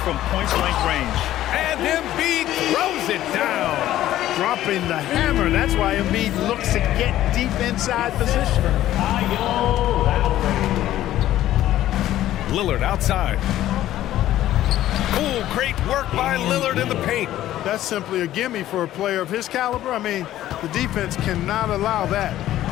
point-blank range. And Embiid throws it down. Dropping the hammer. That's why Embiid looks to get deep inside position. Lillard outside. Oh, great work by Lillard in the paint. That's simply a gimme for a player of his caliber. I mean, the defense cannot allow that.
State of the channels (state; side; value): quieter; right; 13.5 dB